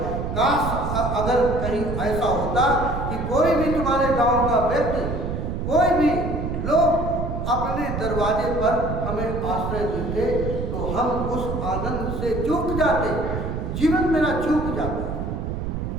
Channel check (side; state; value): right; noise; rumble, 3 dB below the sound